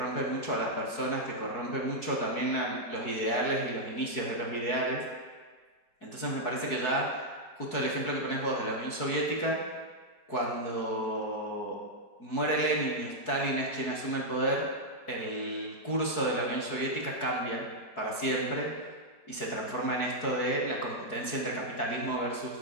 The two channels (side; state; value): right; late; 4.7 ms